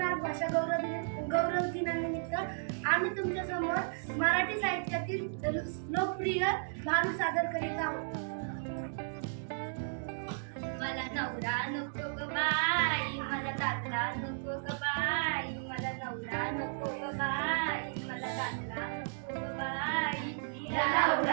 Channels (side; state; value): left; silent; digital silence